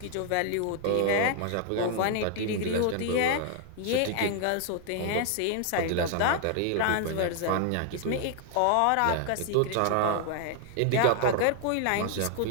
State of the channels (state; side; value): different; both; correlation 0.00